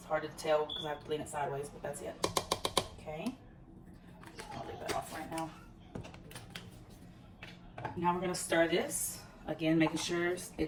hard to tell because I have to lean it sideways, but that's it. Okay. I'll leave that off right now. Now we're gonna stir this. Again, making sure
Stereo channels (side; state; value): both; identical; correlation 1.00